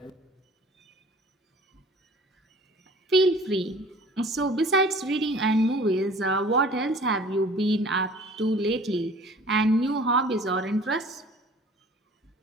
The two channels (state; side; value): normal; both; correlation 0.48